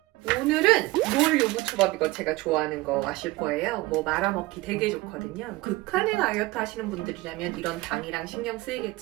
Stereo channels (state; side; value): quieter; left; 20.3 dB